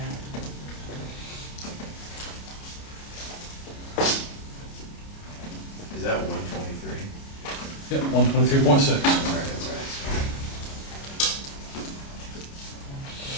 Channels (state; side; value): late; right; 29 ms